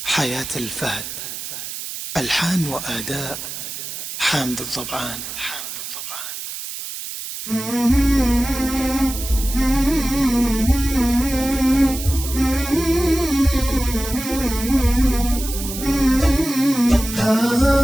حياة الفهد، ألحان وأداء حامد الضبعان.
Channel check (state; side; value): noise; right; hiss, 8 dB below the sound